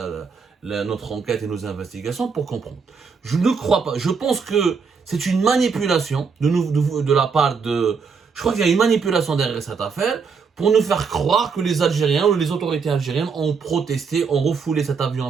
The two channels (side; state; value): left; quieter; 5.5 dB